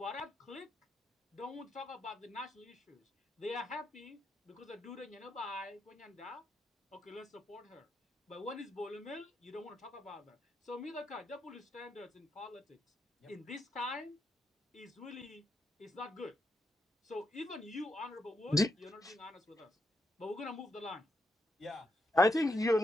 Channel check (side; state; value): both; normal; correlation 0.81